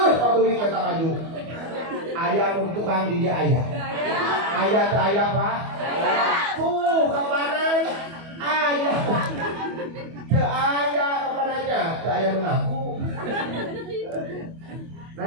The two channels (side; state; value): left; late; 25 ms